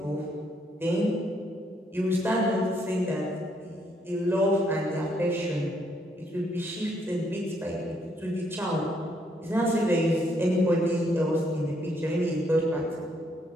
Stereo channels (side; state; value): both; normal; correlation 0.72